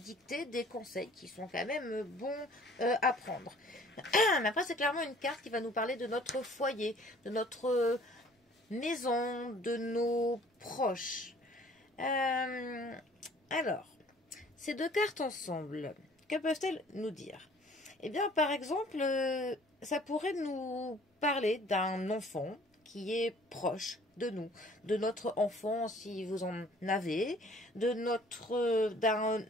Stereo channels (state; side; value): normal; both; correlation 0.54